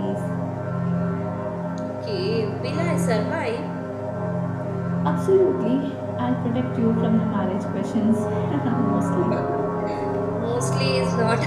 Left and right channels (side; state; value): both; identical; correlation 1.00